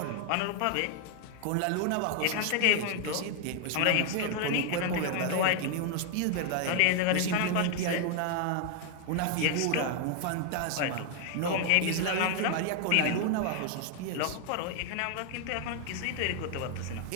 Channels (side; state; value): both; different; correlation 0.00